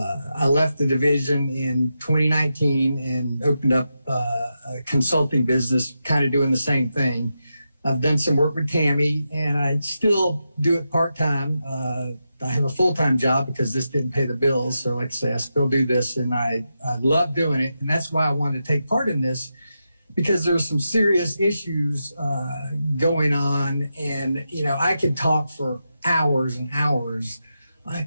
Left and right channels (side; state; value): both; inverted; correlation -0.88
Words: left the division in 2019 and opened up a consulting business, kind of doing the same thing. I've done some work with Tammy, and I still do it part-time. I have a full-time job because this didn't pay the bills. So like I say, I still do this, and I love doing it. And that's why I wanted to take part in this, because there are some serious issues going on. And, you know, I could talk for hours and hours.